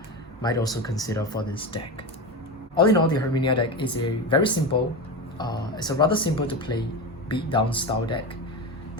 might also consider for this deck. All in all, the Herminia deck is a very simple, it's a rather simple to play beatdown style deck.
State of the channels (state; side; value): normal; both; correlation 0.21